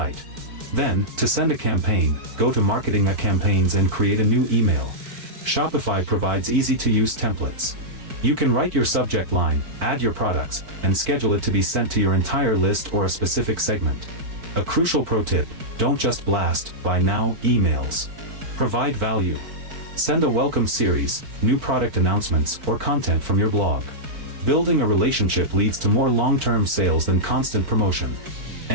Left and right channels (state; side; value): late; left; 4.7 ms